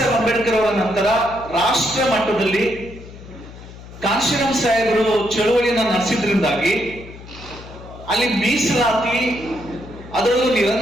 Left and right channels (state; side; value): noise; left; hum, 16 dB below the sound